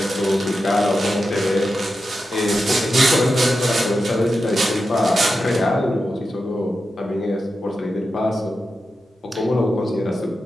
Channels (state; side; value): normal; both; correlation 0.90